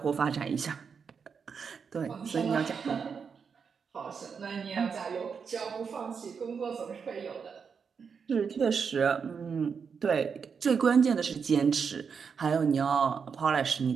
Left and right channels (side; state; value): left; quieter; 6.1 dB